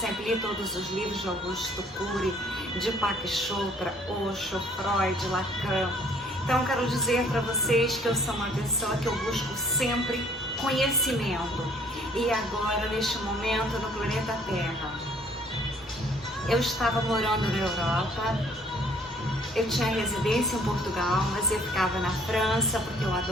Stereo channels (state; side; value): normal; both; correlation 0.59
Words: li todos os livros de Augusto Cury, de Deepak Chopra, Osho, Freud, Lacan. Então quero dizer para vocês que eu sou uma pessoa que eu busco sempre conhecimento. E agora, neste momento, no planeta Terra, eu estava morando na Europa. Eu tinha residência em Portugal, mas eu ficava na França, porque eu